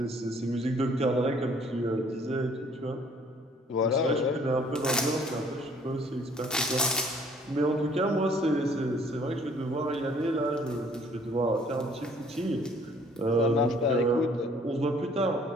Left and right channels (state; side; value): normal; both; correlation 0.58